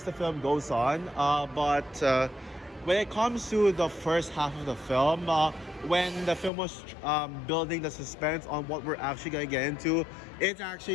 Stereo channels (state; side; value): drops out; right; at 6.5 s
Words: the film goes on. But when it comes to the first half of the film, when the film was building the suspense on what we're actually gonna get into, it's